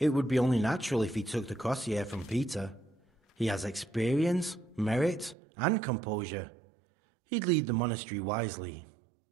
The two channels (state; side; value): drops out; left; at 5.4 s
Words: would be only natural if he took the crossier from Peter. He has experience, merit, and composure. He'd lead the monastery wisely.